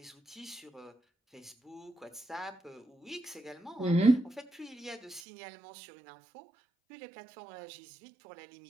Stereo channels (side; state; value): left; drops out; at 5.2 s